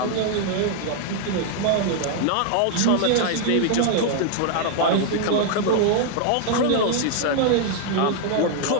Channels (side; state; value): both; different; correlation 0.00